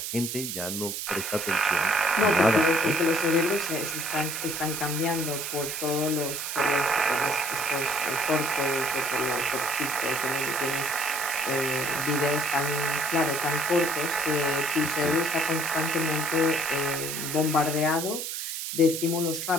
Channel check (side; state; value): right; noise; hiss, 5 dB below the sound